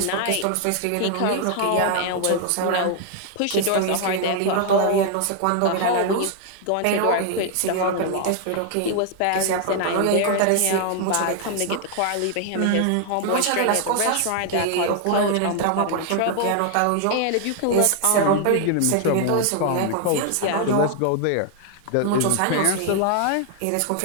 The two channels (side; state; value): both; different; correlation 0.00